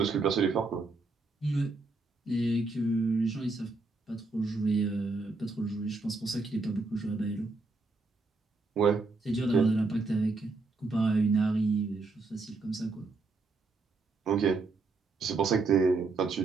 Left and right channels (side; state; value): left; quieter; 3.7 dB